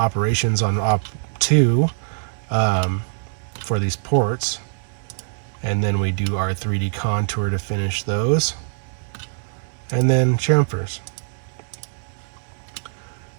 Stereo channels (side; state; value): left; silent; digital silence